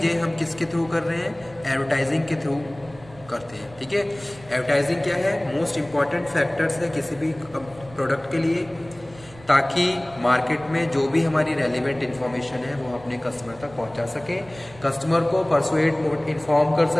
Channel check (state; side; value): noise; right; rumble, 21 dB below the sound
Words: हम किसके थ्रू कर रहे हैं, एडवर्टाइजिंग के थ्रू करते हैं, ठीक है। एडवर्टाइजिंग क्या है, मोस्ट इंपॉर्टेंट फैक्टर्स है किसी भी प्रोडक्ट के लिए, ताकि मार्केट में जो भी हमारी रेलिवेंट इन्फॉर्मेशन है वो अपने कस्टमर तक पहुंचा सके, कस्टमर को परसुएट इन्फॉर्म कर